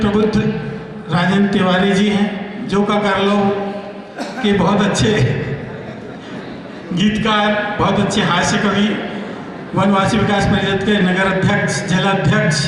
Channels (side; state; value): both; identical; correlation 1.00